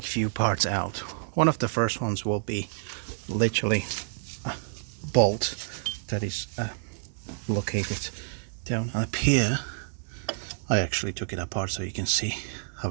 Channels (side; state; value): left; silent; digital silence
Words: a few parts out. One of the first ones will be literally a bolt that is located down up here. I actually took it apart so you can see